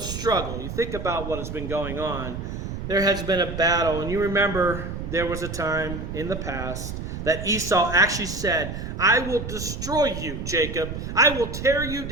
You think about what has been going on. There has been a battle, and you remember there was a time in the past that Esau actually said, I will destroy you, Jacob. I will tear you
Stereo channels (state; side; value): noise; right; rumble, 6 dB below the sound